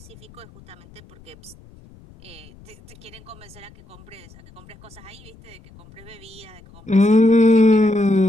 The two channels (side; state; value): left; noise; rumble, 23 dB below the sound